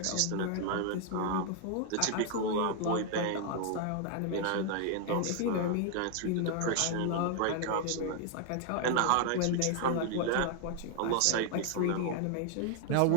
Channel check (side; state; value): both; different; correlation 0.00